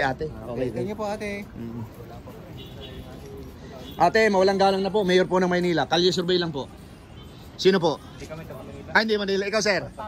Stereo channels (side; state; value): both; identical; correlation 1.00